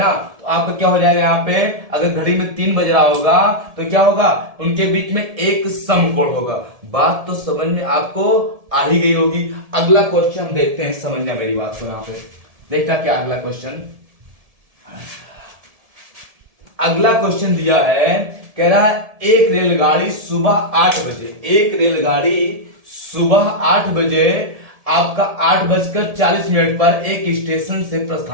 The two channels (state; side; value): late; left; 1.7 ms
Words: तो आपका क्या हो जाएगा, यहाँ पे अगर घड़ी में 3 बज रहा होगा तो क्या होगा, उनके बीच में एक समकोण होगा। बात तो समझ में आपको आ ही गई होगी। अगला क्वेश्चन देखते हैं, समझना मेरी बात को। यहाँ पे देखना क्या अगला क्वेश्चन। अगला क्वेश्चन दिया है, कह रहा है एक रेलगाड़ी सुबह 8 बजे, एक रेलगाड़ी सुबह 8 बजे आपका 8:40 पर एक स्टेशन से